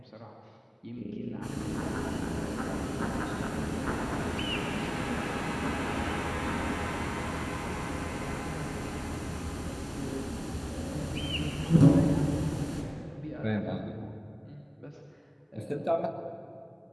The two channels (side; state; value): both; identical; correlation 1.00